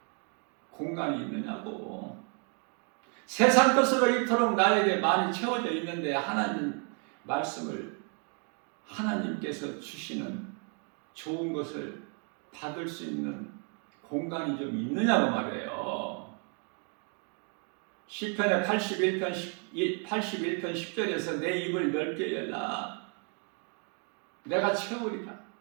공간이 있느냐고. 세상 것으로 이토록 나에게 많이 채워져 있는데 하나님 말씀을 하나님께서 주시는 좋은 것을 받을 수 있는 공간이 좀 있느냐고 말이에요. 시편의 81편 10절에서 내 입을 넓게 열라. 내가 채우리라.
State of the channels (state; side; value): quieter; left; 39.8 dB